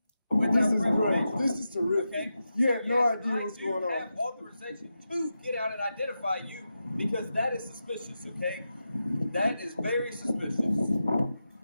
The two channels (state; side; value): inverted; both; correlation -0.90